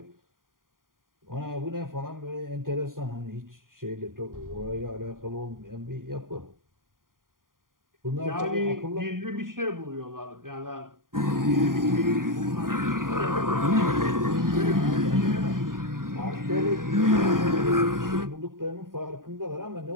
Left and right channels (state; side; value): late; left; 0.91 ms